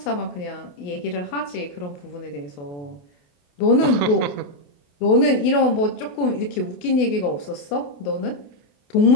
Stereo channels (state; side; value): late; right; 28 ms